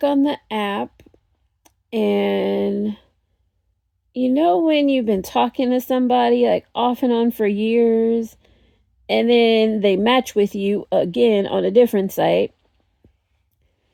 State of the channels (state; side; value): identical; both; correlation 1.00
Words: on the app, and you know when you've been talking to somebody like off and on for years, and then they match with you again on a different site,